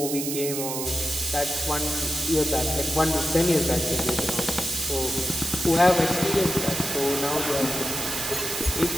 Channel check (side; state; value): right; noise; hiss, 4 dB below the sound